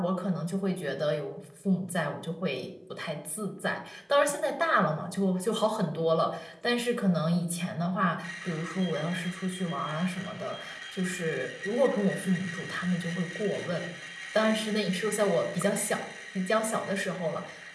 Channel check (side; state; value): both; identical; correlation 1.00